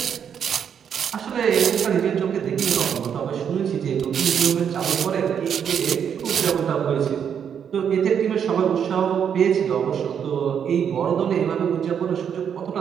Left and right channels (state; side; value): quieter; left; 8.0 dB